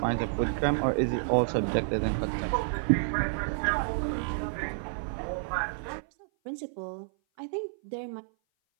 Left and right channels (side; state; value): left; silent; 56 dB below the other